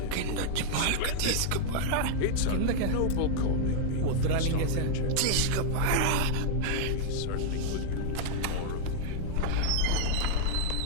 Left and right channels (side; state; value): both; different; correlation -0.01